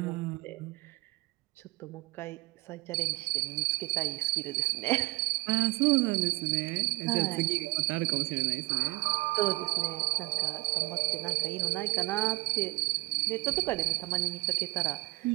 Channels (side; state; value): left; quieter; 22.5 dB